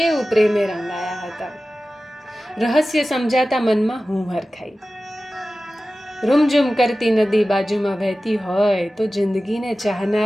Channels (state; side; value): normal; both; correlation 0.95